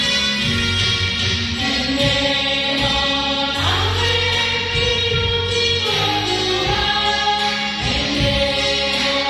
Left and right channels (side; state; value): both; identical; correlation 1.00